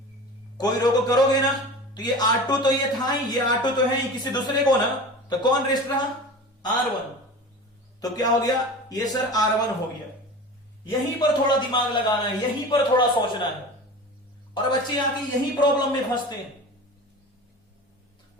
कोई रो को करोगे ना, तो ये R2 तो ये था ही, ये R2 तो है ही, किसी दूसरे को ना, तो कौन रेस्ट रहा, R1। तो क्या हो गया, ये सर R1 हो गया। यहीं पर थोड़ा दिमाग लगाना है, यहीं पर थोड़ा सोचना है। और बच्चे आके यही प्रॉब्लम में फंसते हैं,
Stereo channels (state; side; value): normal; both; correlation 0.34